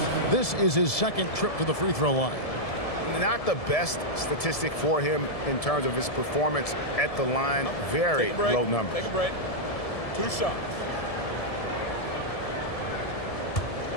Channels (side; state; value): right; late; 1.7 ms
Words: This is his second trip to the free throw line. Not the best statistic for him in terms of his performance at the line. Very low numbers. Take a break. 2 shots.